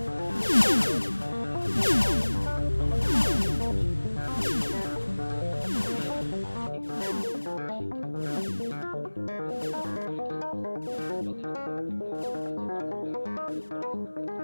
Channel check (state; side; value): inverted; both; correlation -1.00